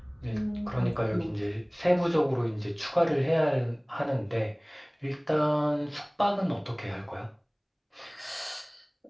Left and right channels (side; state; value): both; identical; correlation 1.00